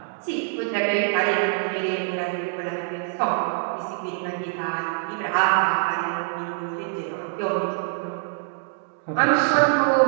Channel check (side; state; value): left; silent; 61 dB below the other